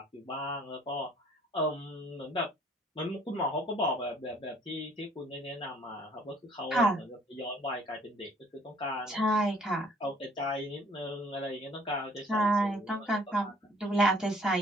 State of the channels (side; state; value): both; normal; correlation 0.58